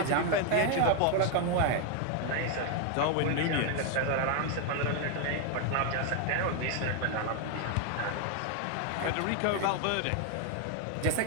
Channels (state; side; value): different; both; correlation 0.01